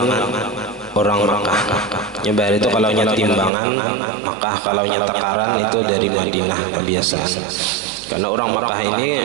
orang Makkah. Nyebar itu kalau timbangan Makkah, kalau takaran itu dari Madinah kebiasaan. Karena orang Makkah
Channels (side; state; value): left; drops out; at 3.5 s